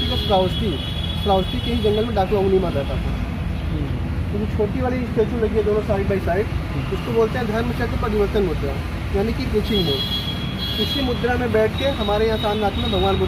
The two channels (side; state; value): both; identical; correlation 1.00